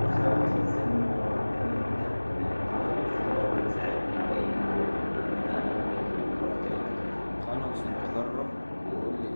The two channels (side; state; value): both; inverted; correlation -1.00